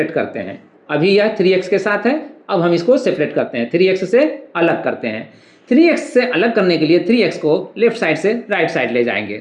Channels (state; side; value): identical; both; correlation 1.00